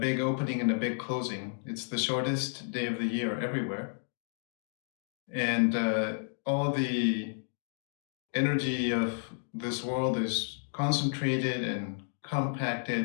opening and a big closing. It's the shortest day of the year everywhere. And all the energy of this world is concentrated and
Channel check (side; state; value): right; silent; digital silence